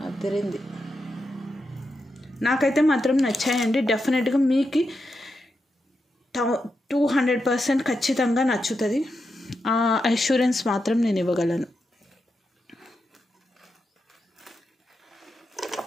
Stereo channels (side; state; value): both; normal; correlation 0.86